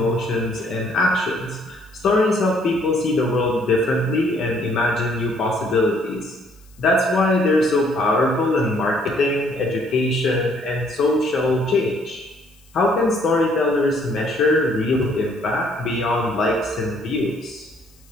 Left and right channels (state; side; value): noise; left; hiss, 30 dB below the sound